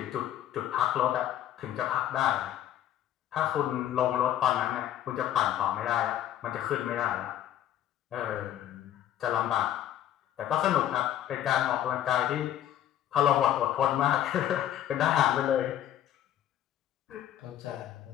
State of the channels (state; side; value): quieter; right; 11.6 dB